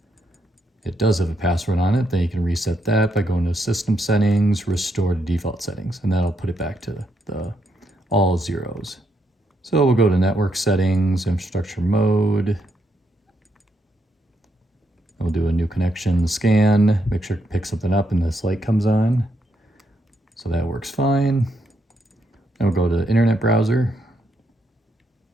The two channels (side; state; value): both; normal; correlation 0.78